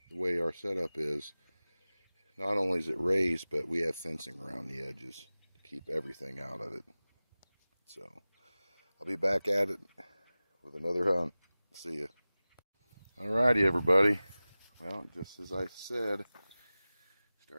the way our setup is, not only is it raised, but we have fencing around the edges to keep everything out of it. So I'll be back at it with another hunt. See ya. Alrighty, everybody. Well, just as I said,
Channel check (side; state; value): both; inverted; correlation -0.97